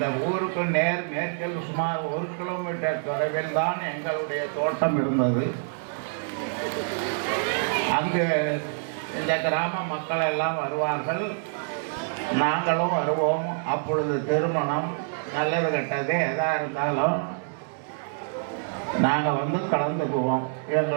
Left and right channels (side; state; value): left; silent; digital silence